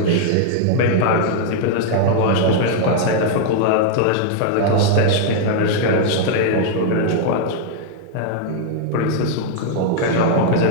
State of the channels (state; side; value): different; both; correlation -0.01